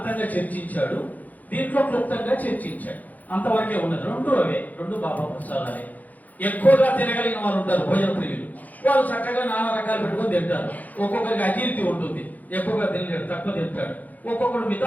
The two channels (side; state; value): right; late; 0.080 ms